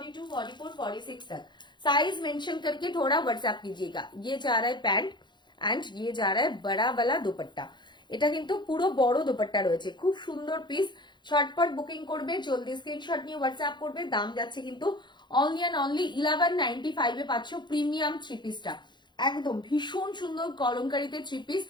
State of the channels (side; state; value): right; late; 0.22 ms